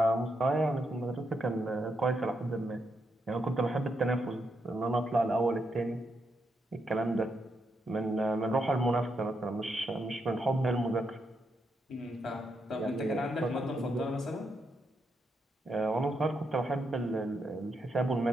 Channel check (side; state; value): both; normal; correlation 0.81